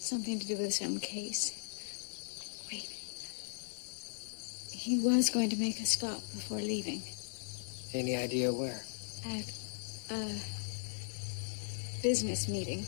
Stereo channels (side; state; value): right; silent; digital silence